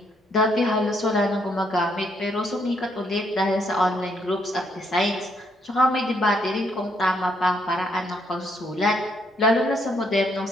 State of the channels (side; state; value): both; normal; correlation 0.72